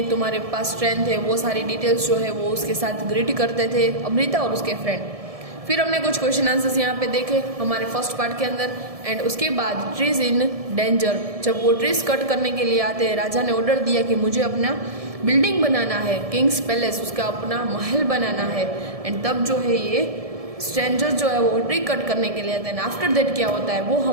तुम्हारे पास स्ट्रेंथ है, वो सारी डिटेल्स जो है वो उसके साथ ग्रीट करते थे अमृता और उसके फ्रेंड। फिर हमने कुछ क्वेश्चन आंसर्स यहाँ पे देखे हमारे फर्स्ट पार्ट के अंदर, एंड उसके बाद ट्रीज इन डेंजर, जब वो ट्रीज कट करने के लिए आते हैं, राजा ने ऑर्डर दिया कि मुझे अपना बिल्डिंग बनाना है, किंग्स पैलेस, उसका अपना महल बनाना है, एंड तब जो है ये स्ट्रेंजर जो है वो ट्री कट करने के लिए आते हैं। आफ्टर दैट क्या होता है वो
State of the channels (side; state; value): left; late; 1.7 ms